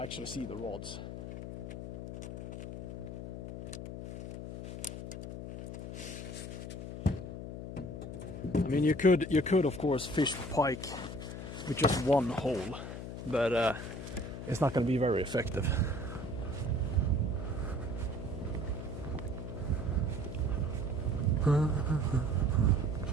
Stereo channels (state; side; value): noise; left; hum, 8 dB below the sound